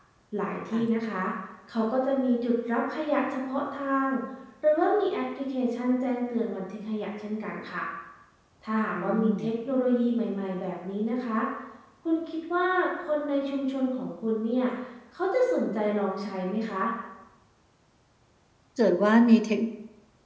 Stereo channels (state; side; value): identical; both; correlation 1.00